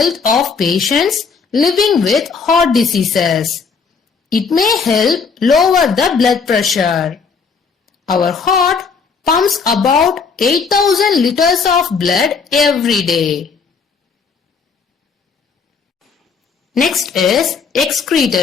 of patients living with heart diseases. It may help lower the blood pressure. Our heart pumps about 8,000 liters of blood every day. Next is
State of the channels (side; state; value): right; quieter; 5.4 dB